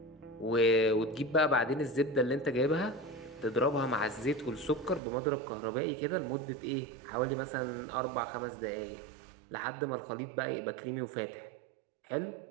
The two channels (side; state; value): left; drops out; at 5.0 s